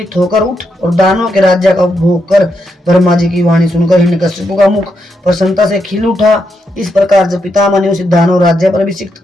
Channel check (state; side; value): normal; both; correlation 0.82